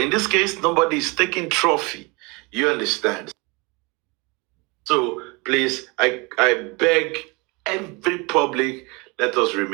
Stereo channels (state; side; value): quieter; left; 27.6 dB